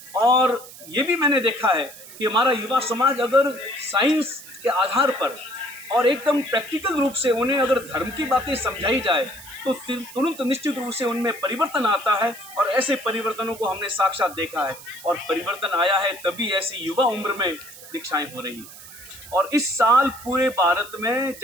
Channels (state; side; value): noise; right; hiss, 17 dB below the sound